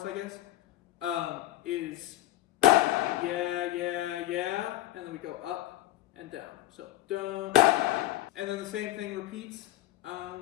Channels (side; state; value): right; quieter; 15.4 dB